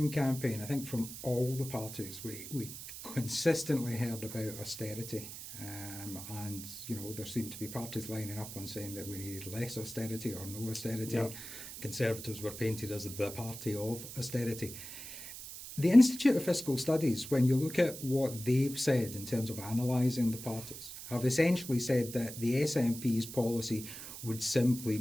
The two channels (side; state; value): right; noise; hiss, 11 dB below the sound